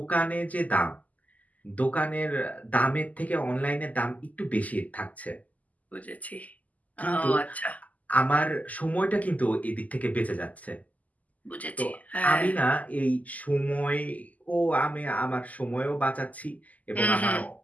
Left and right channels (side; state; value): right; late; 0.076 ms